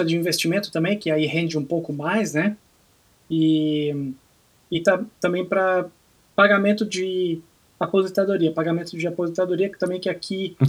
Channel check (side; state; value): both; identical; correlation 1.00